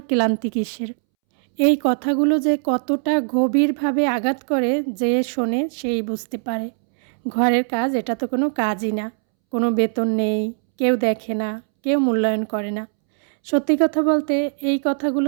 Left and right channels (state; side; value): silent; left; 65 dB below the other